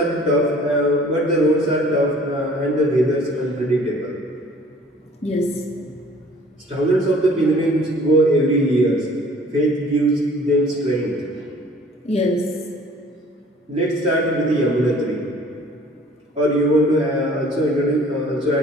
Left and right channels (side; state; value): both; normal; correlation 0.52